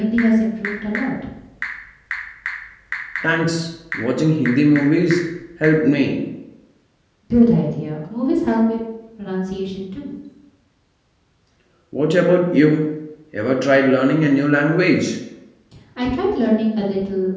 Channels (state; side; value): identical; both; correlation 1.00